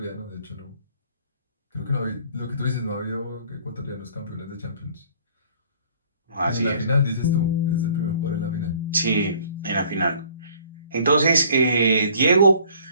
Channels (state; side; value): inverted; both; correlation -0.55